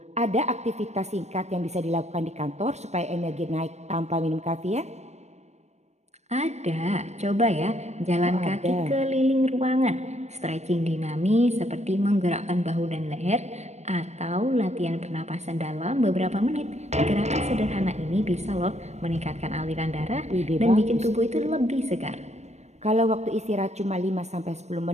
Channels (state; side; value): late; left; 0.32 ms